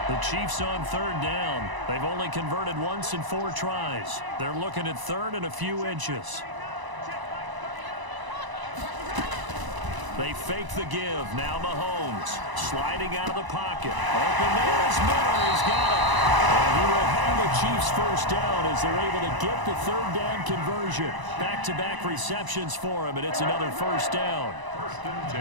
The Chiefs on third down. They've only converted once in 4 tries. They're looking at third and a few inches. They fake the give. Now Mahomes sliding out of the pocket. Open there is Miller. He's got it. And he will have the Chiefs first down as they're able to get the third down conversion. Back-to-back receptions for him, and it's another first down. First and 10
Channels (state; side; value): late; left; 1.0 ms